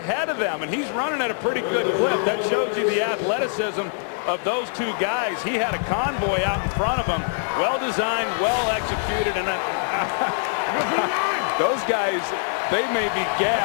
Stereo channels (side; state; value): right; silent; 63 dB below the other